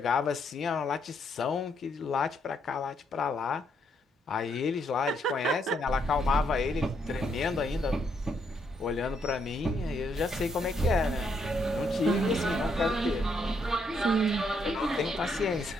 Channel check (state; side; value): normal; both; correlation 0.74